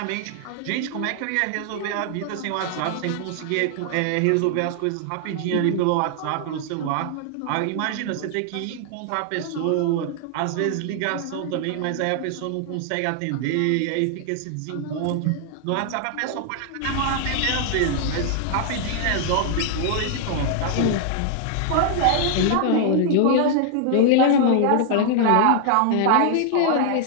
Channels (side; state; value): both; different; correlation 0.00